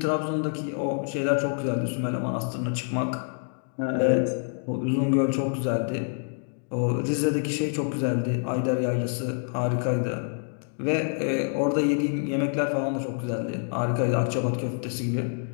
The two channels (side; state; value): right; silent; 60 dB below the other